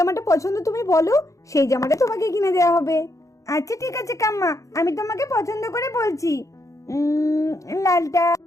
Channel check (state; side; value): late; right; 0.15 ms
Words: পছন্দ তুমি বলো, সেই জামাটা তোমাকে কিনে দেওয়া হবে। আচ্ছা ঠিক আছে কাম্মা, আমি তোমাকে পছন্দ করে বলছি। লালটা।